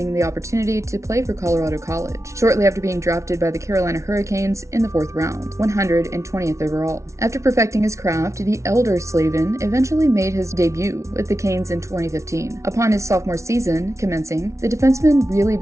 the opportunity to play for Colorado College, shortly after being drafted by the Carolina Hurricanes in the 4th round, 120th overall. After perfecting his craft, the elder Slavin eventually made his debut with the Canes in 2015. Upon his sophomore season commencing, the defenseman really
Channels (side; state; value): left; late; 0.14 ms